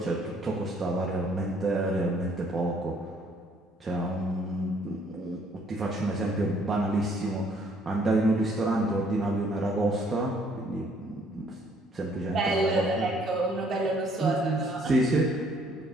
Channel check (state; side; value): normal; both; correlation 0.63